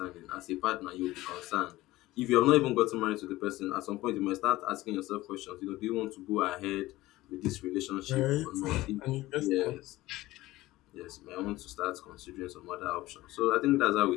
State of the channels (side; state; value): right; quieter; 17.7 dB